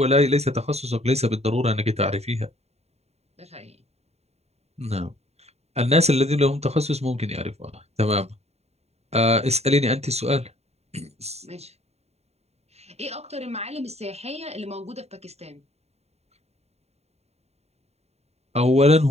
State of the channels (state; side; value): late; left; 0.31 ms